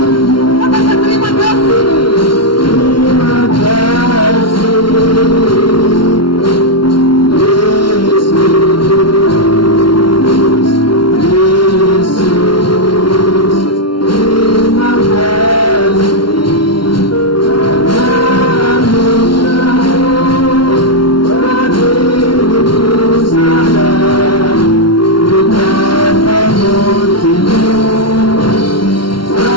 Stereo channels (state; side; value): late; right; 0.73 ms